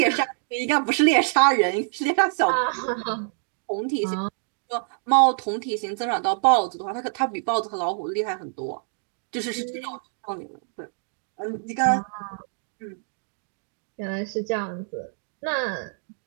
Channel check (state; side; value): silent; left; digital silence